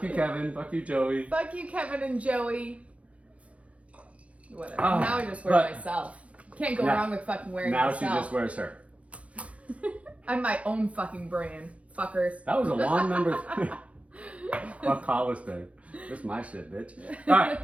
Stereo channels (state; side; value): late; left; 0.064 ms